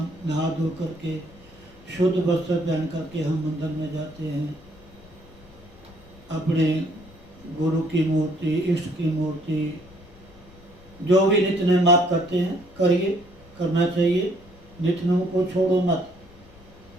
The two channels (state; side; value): noise; left; rumble, 23 dB below the sound